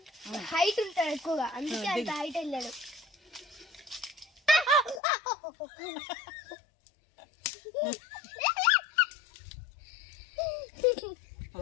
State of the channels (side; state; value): right; drops out; at 5.0 s